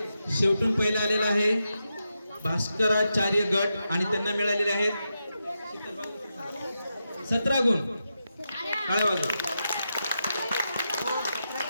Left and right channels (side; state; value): both; inverted; correlation -0.87